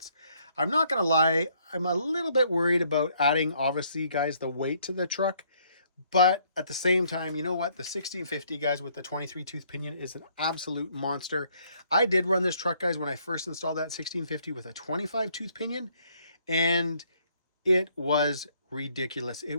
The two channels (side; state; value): both; inverted; correlation -0.67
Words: I'm not gonna lie, I'm a little bit worried about adding, obviously, guys, the weight to the truck, but at the same time, you know what, the 1650, guys, with the 23 tooth pinion is an absolute monster. I did run this truck, guys, when I first installed that 1650 with a 25 tooth pinion, and it was ridiculous. It